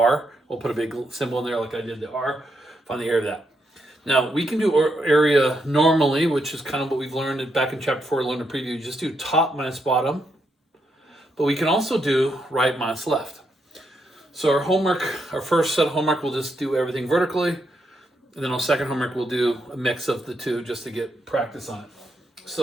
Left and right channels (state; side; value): normal; both; correlation 0.80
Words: We'll put a big symbol in there like I did the R. Find the area of that. Now, we can do area normally, which is kind of what we've learned back in chapter 4, learned a preview. Just do top minus bottom. But we can also do right minus left. So our first set of homework, we'll just do everything vertically. And then our second homework, we'll do a mix of the two just to get practice on it.